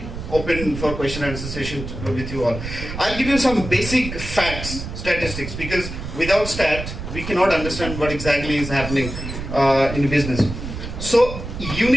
open for question and answer session with you all. I'll give you some basic facts, statistics, because without stat, we cannot understand what exactly is happening in business. So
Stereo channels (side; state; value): right; noise; rumble, 8 dB below the sound